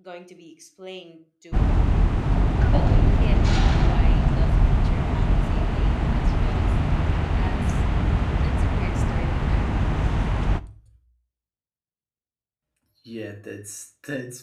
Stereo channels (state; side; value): identical; both; correlation 1.00